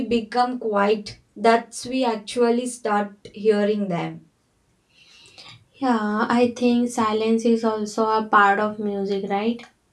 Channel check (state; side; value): identical; both; correlation 1.00